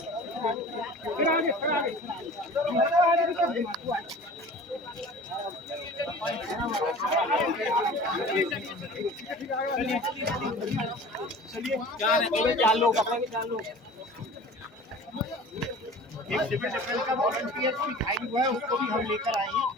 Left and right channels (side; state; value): both; normal; correlation 0.41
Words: चार लोग अपना भी 4 लोग एक सिविल डिफेंस का वॉलंटियर भी घायल हुआ है, उसको भी हम लेकर आए हैं।